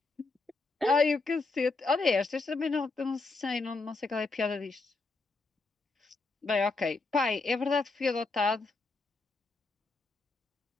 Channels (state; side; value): quieter; right; 3.6 dB